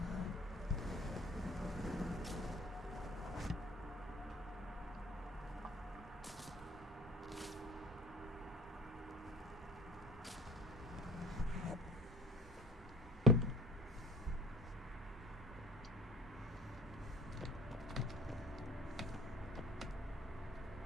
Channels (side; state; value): both; normal; correlation 0.45